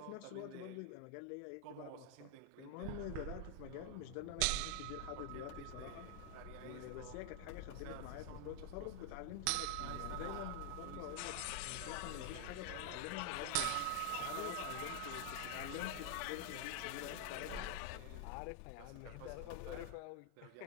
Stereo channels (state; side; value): different; both; correlation 0.00